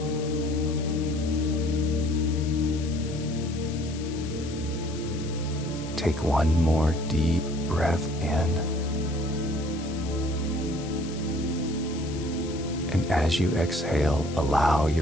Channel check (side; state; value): left; noise; hiss, 15 dB below the sound